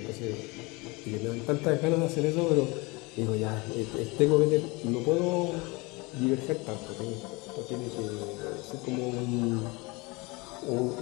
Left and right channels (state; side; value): quieter; right; 25.6 dB